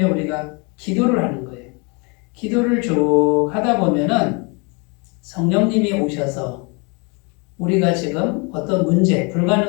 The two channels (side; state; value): right; quieter; 31.6 dB